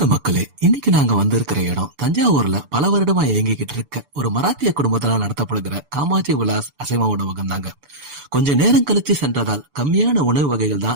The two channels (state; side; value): late; left; 6.9 ms